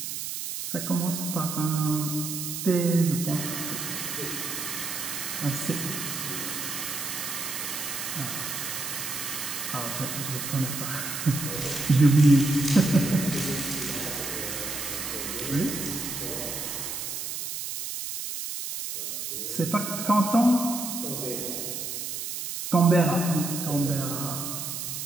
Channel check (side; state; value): right; noise; hiss, 5 dB below the sound